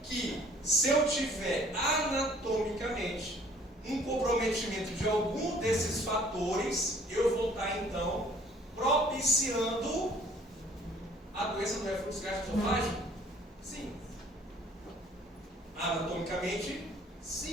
que se eu tiver anatomicamente um comprometimento de algum desses fatores, eu vou estar, então, propiciando a doença do refluxo gastroesofágico? Sim. Anatomicamente,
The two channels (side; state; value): both; normal; correlation 0.56